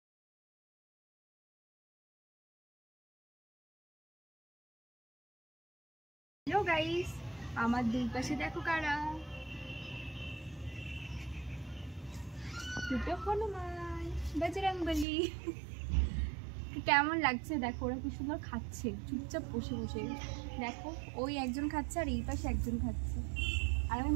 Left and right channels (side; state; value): left; drops out; at 15.1 s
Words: হ্যালো গাইস, আমার দুই পাশে দেখো কারা, দুটো হনুমান বজরংবলী। কেমন লাগছে দেখো, ওরা কি সুন্দর খাচ্ছে চুপচাপ বসে বসে। দেখো ওই একজন খাচ্ছে আর এই পাশে একজন খাচ্ছে, আর আমি